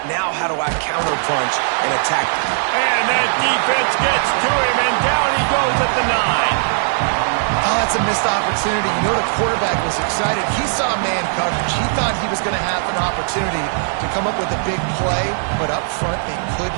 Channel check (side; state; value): left; silent; 67 dB below the other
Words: Now how do I counterpunch and attack them? And that defense gets to him, and down he goes at the 9. Oh, that's a missed opportunity. You know the quarterback was excited. He saw man coverage. He thought he was going to have an opportunity to come up with a big play, but up front they could